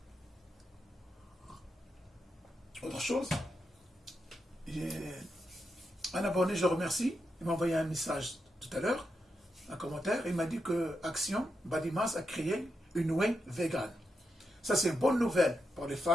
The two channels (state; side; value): normal; both; correlation 0.85